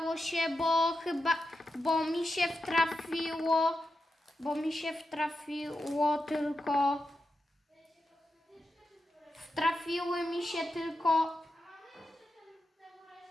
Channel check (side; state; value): both; normal; correlation 0.89